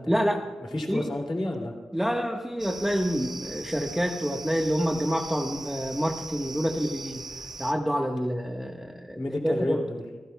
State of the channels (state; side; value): normal; both; correlation 0.96